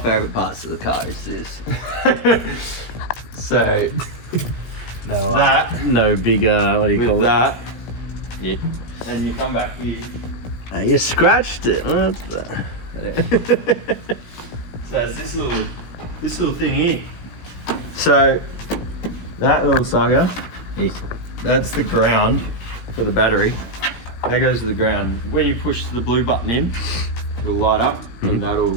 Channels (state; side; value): late; right; 17 ms